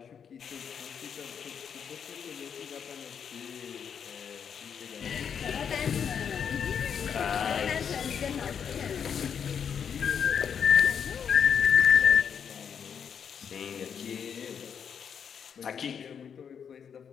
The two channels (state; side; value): quieter; right; 7.5 dB